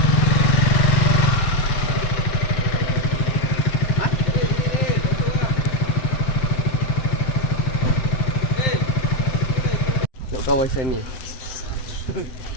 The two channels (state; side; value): late; right; 7.9 ms